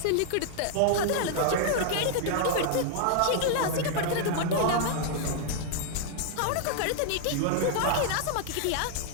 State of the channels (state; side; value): different; both; correlation -0.01